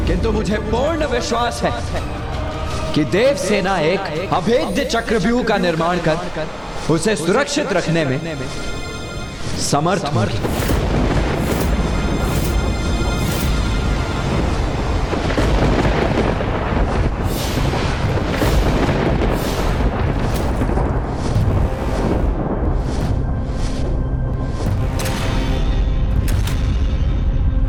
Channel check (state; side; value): identical; both; correlation 1.00